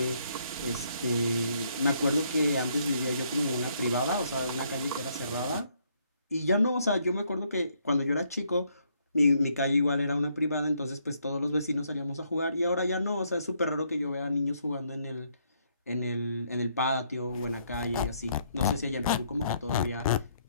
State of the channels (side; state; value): both; inverted; correlation -0.71